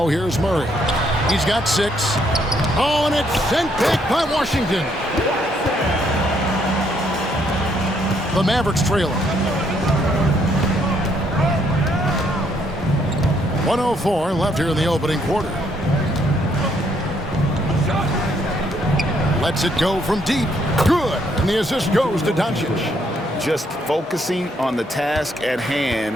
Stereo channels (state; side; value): normal; both; correlation 0.71